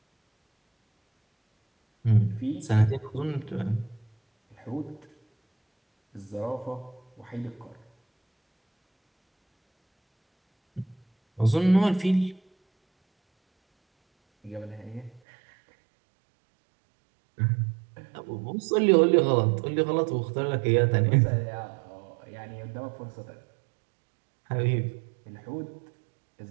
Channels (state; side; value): drops out; left; at 15.2 s